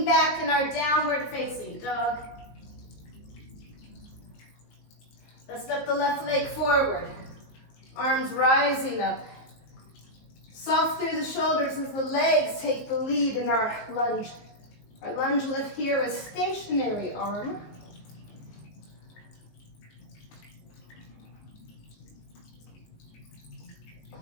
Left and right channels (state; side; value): late; right; 19 ms